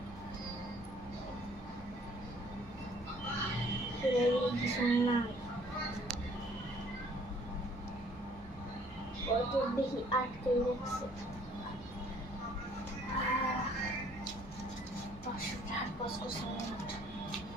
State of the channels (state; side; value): normal; both; correlation 0.59